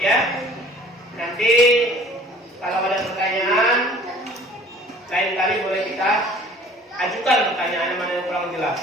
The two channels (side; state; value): both; normal; correlation 0.51